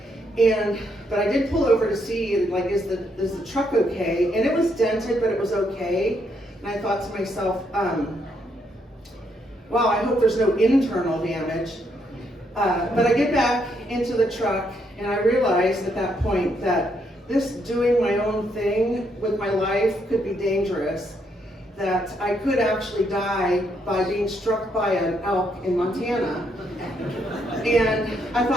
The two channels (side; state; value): both; normal; correlation 0.75